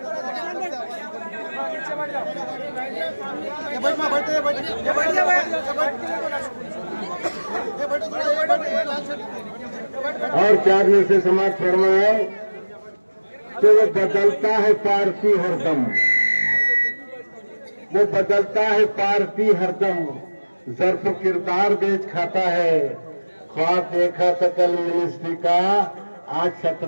और 4 में से समाज फरमाए कि वो बदलता है पार्टी हरदम, वो बदलता है पार्टी हरदम, ज़र्फ किरदार बेच खाता है। ख्वाब देखा था कल मिनिस्ट्री का, आज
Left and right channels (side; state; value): both; inverted; correlation -1.00